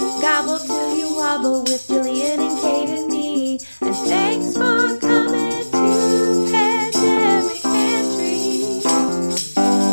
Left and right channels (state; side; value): inverted; both; correlation -1.00